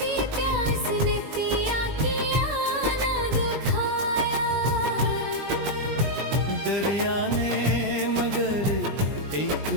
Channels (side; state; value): left; late; 20 ms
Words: प्यास ने पिया किया न दुखा। दरिया ने मगर एक